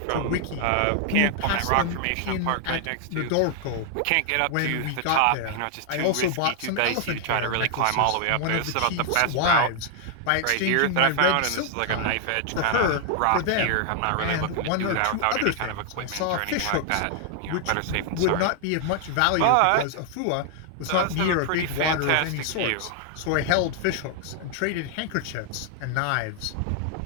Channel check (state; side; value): different; both; correlation 0.00